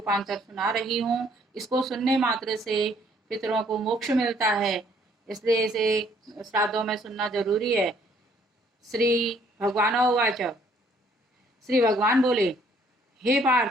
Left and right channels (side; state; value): both; normal; correlation 0.63